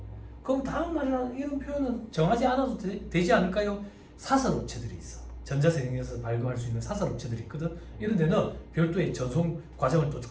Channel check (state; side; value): identical; both; correlation 1.00